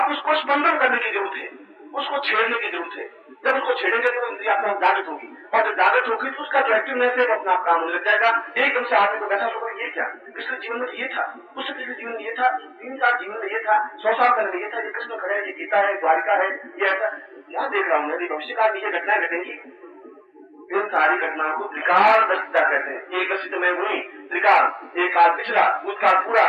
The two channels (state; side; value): identical; both; correlation 1.00